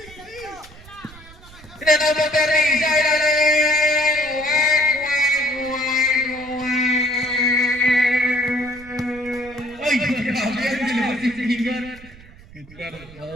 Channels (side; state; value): right; noise; rumble, 20 dB below the sound